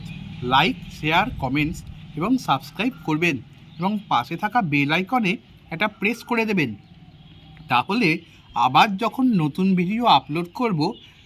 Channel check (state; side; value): identical; both; correlation 1.00